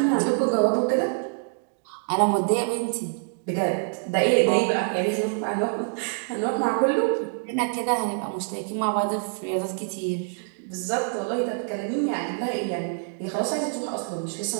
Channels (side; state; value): left; silent; 60 dB below the other